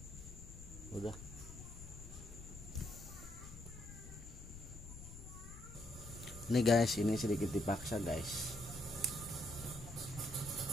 udah. Ini guys, ini sedikit dipaksa guys.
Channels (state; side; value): noise; left; rumble, 13 dB below the sound